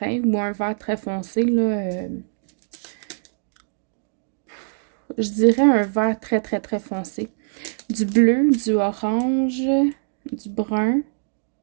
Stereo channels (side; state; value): left; silent; digital silence